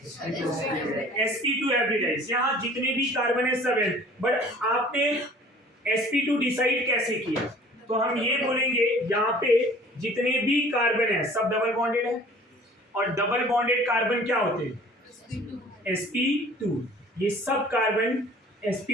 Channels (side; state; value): both; normal; correlation 0.50